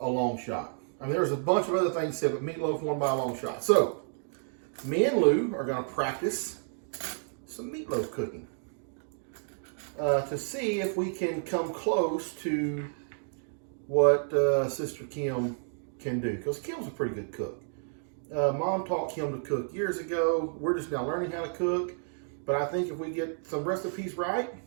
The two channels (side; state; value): left; silent; digital silence